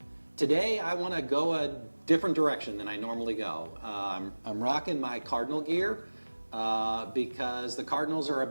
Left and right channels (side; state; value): both; inverted; correlation -1.00